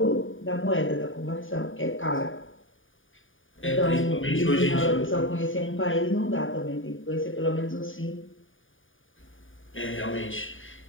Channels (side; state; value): right; late; 0.57 ms